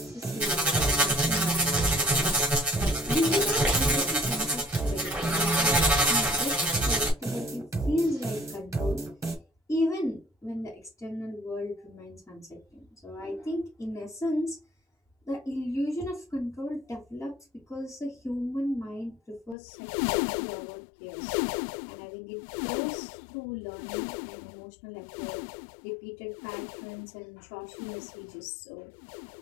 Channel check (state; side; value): drops out; right; at 19.6 s